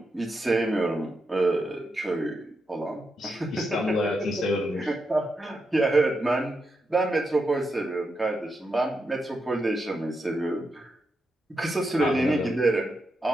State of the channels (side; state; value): both; normal; correlation 0.85